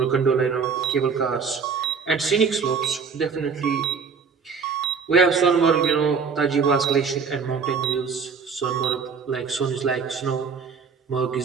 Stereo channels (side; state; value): left; quieter; 5.7 dB